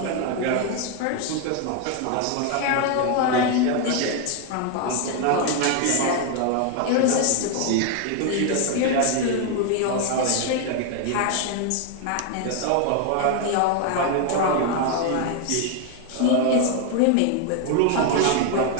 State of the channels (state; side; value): different; both; correlation 0.01